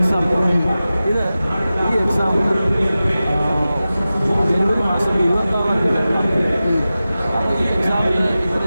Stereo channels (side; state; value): both; inverted; correlation -0.95